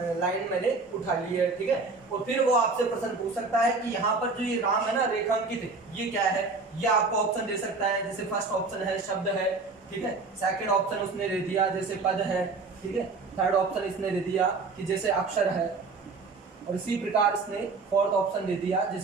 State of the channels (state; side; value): quieter; left; 4.0 dB